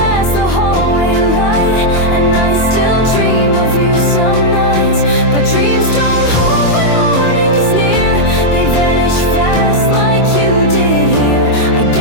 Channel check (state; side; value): late; right; 24 ms